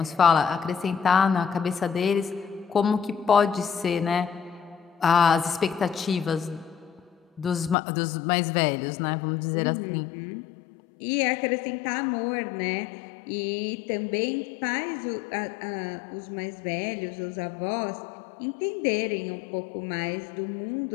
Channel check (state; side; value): drops out; right; at 7.8 s